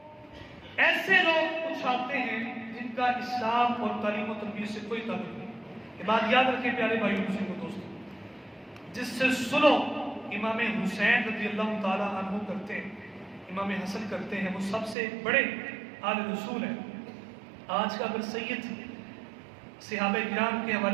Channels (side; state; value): left; drops out; at 15.0 s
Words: ایسے لوگ اچھالتے ہیں جن کا اسلام اور تعلیم و تربیت سے کوئی تعلق نہیں۔ یہ بات یاد رکھیں پیارے بھائیو بزرگوں دوستوں، جس سے صلح امام حسین رضی اللہ تعالیٰ عنہ کرتے ہیں، امام حسن کرتے ہیں، وہ سب سے بڑے آل رسول ہیں۔ آج کا اگر سید صحابہ کرام کے